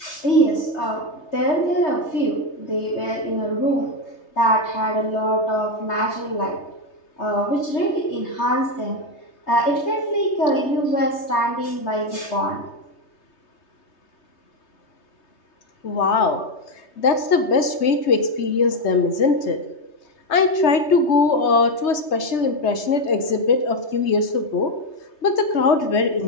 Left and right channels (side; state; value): right; late; 3.2 ms